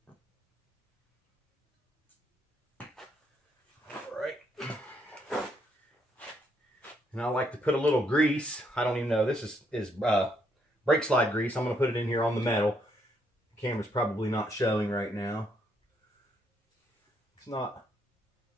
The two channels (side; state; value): both; normal; correlation 0.73